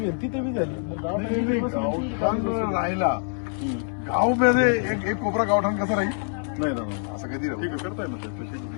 तिथे बी झाली नाही, गावठाण राहिला गाव मध्ये एक कोपरा गावठाण कसा राहील नाही ना असं कधी राहू ठीक आहे करताय ना साहेब.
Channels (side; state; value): right; silent; 57 dB below the other